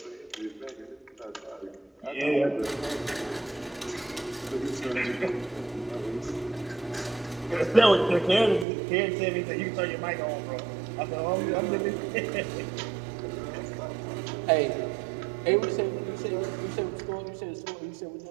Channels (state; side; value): drops out; left; at 8.7 s